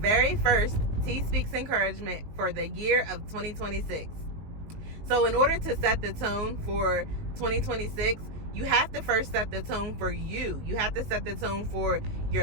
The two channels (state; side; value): late; left; 19 ms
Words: first T Speaks Encouragement for the year of 2026. So in order to set the tone for 2026, you have to first set the tone for you. You have to set the tone for